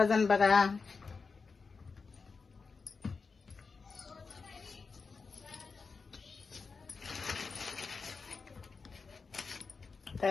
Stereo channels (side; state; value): right; quieter; 4.7 dB